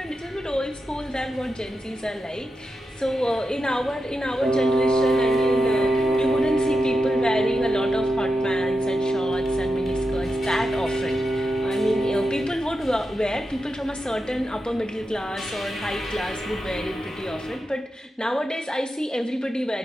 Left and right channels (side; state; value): both; normal; correlation 0.89